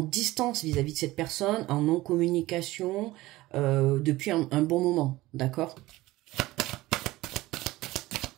vis-à-vis de cette personne, en non-communication, depuis un bon moment. D'accord?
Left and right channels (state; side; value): quieter; left; 18.3 dB